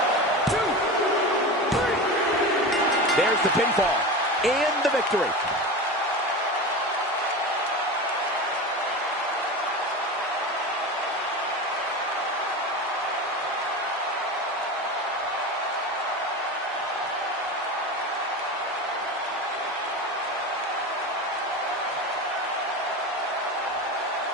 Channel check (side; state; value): both; normal; correlation 0.26